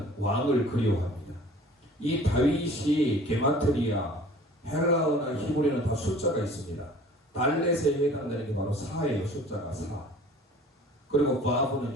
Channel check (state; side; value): normal; both; correlation 0.48